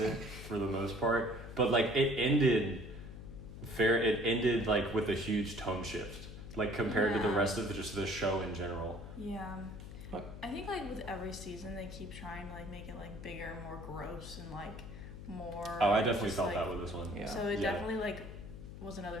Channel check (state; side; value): noise; left; hum, 11 dB below the sound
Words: for the most part, but like it ended like with a huge tone shift, like compared to the Yeah. rest of just the show in general. Yeah. What? I think like with every season they keep trying to like make it like bigger, more gross, and like more. Oh, I definitely just, felt like, that with this one. Yeah. So it Yeah. definitely like was another